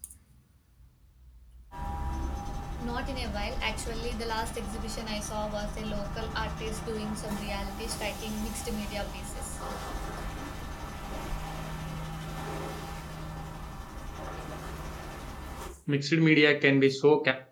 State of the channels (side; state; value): both; identical; correlation 1.00